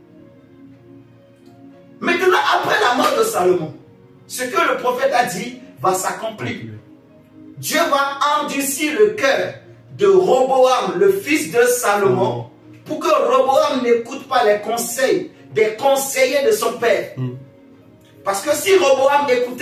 Maintenant, après la mort de Salomon, ce que le prophète a dit va s'accomplir. Dieu va endurcir le cœur de Roboam, le fils de Salomon, pour que Roboam n'écoute pas les conseils des conseillers de son père. Parce que si Roboam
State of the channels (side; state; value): both; identical; correlation 1.00